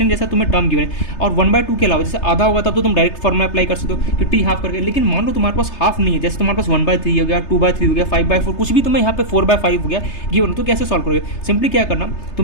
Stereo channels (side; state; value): right; late; 3.3 ms